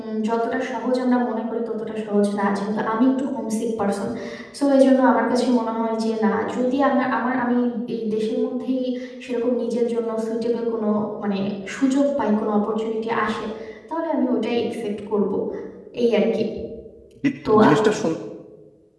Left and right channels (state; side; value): identical; both; correlation 1.00